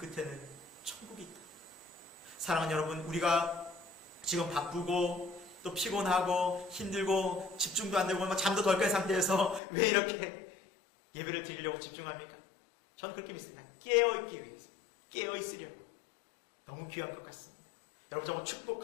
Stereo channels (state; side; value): drops out; right; at 9.6 s